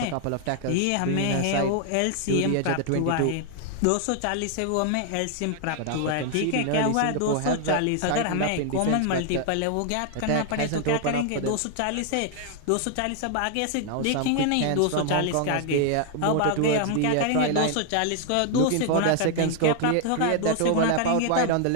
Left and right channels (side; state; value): both; different; correlation 0.00